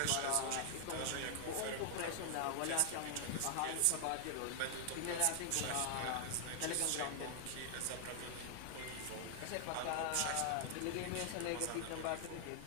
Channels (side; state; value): both; different; correlation 0.00